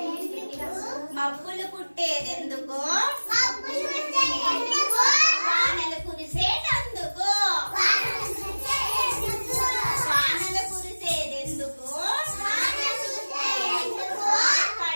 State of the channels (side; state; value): both; inverted; correlation -1.00